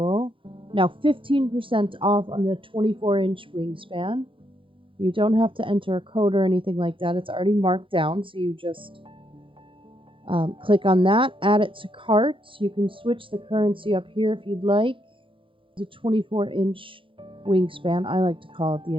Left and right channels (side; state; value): left; late; 0.25 ms